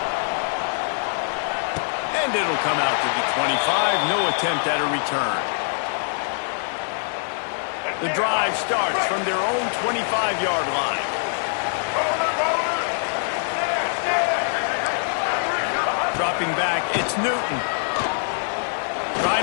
And it'll come out to the 25. No attempt at a return. The drive starts from their own 25-yard line. Dropping back, it's Newton.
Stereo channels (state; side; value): silent; right; digital silence